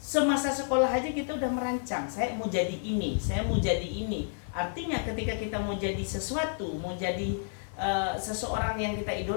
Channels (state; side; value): silent; right; digital silence